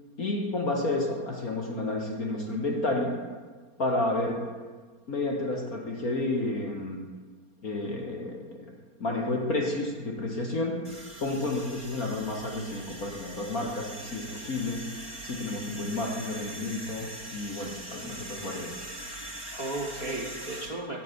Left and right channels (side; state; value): right; late; 4.3 ms